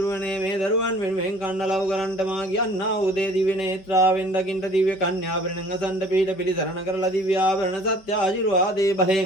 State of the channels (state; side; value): late; right; 5.0 ms